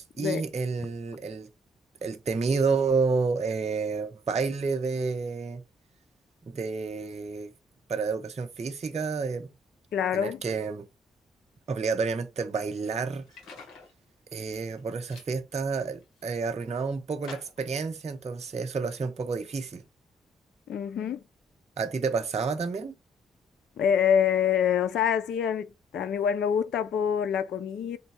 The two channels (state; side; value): normal; both; correlation 0.60